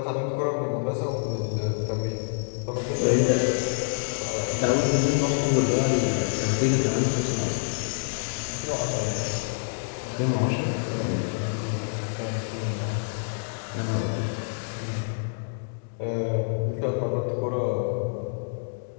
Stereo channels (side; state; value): right; silent; digital silence